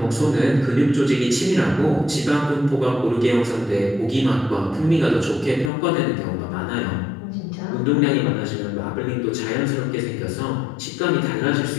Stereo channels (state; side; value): drops out; right; at 5.7 s